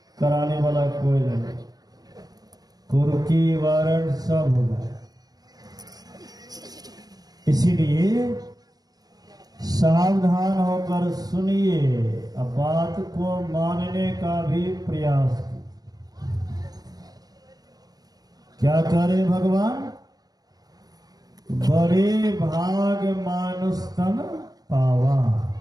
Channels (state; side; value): late; left; 0.19 ms